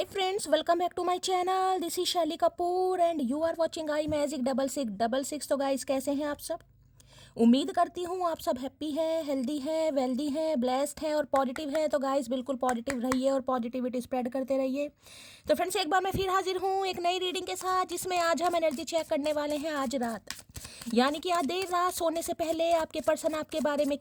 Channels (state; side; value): identical; both; correlation 1.00